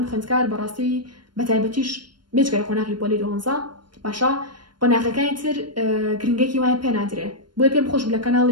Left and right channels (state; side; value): late; left; 0.72 ms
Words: خوێندکار بەڕاستی بە تایبەتیش بێجگەرە قۆناغی پۆلی 12 باشە قۆناغەکانی تر گرنگێکی وایە پێ نادرێ بۆیە پێم خۆش لە